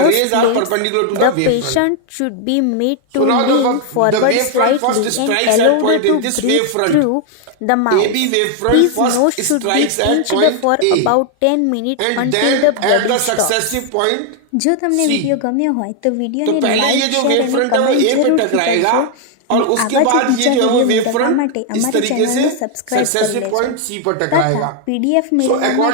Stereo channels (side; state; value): both; different; correlation 0.00